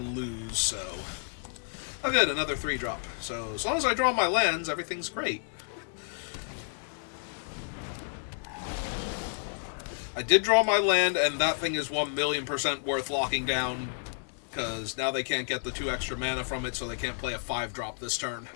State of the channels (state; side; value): silent; right; digital silence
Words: so... Oh good, another 3-drop. So, as long as I draw my lands, everything's great. I did draw my land, and that thing is 1,000,000% worth locking down, because now they can't get the 2 extra mana from it, so they can't play a 5-drop this turn.